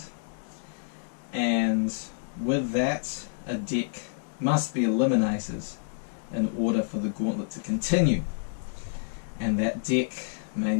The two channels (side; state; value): right; silent; digital silence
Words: and with that a deck must be eliminated in order for the gauntlet to continue, and that deck may